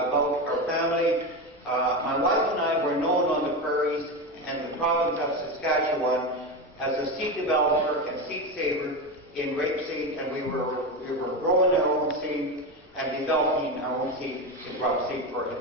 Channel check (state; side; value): normal; both; correlation 0.18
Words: our family. My wife and I were known on the prairies and the province of Saskatchewan as a seed developer and seed saver in rapeseed, and we were growing our own seed and developing our own seed in crop seed for